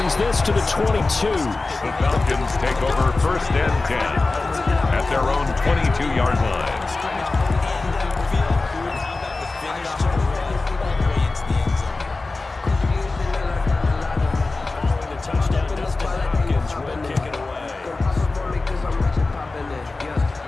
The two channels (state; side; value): quieter; right; 3.5 dB